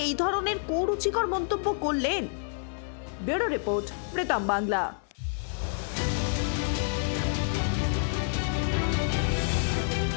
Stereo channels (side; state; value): right; silent; 59 dB below the other